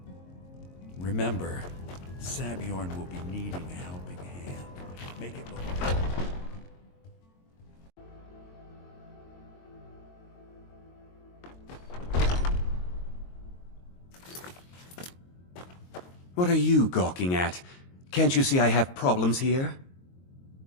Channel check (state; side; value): late; right; 22 ms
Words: Remember, Sabjorn will be needing a helping hand. Make it look... What are you gawking at? Can't you see I have problems here?